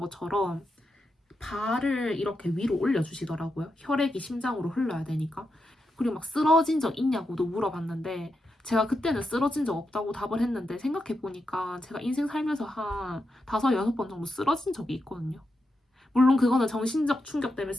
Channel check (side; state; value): both; normal; correlation 0.86